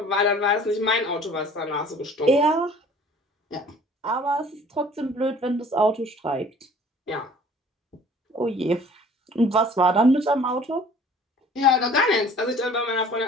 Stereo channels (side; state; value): both; normal; correlation 0.50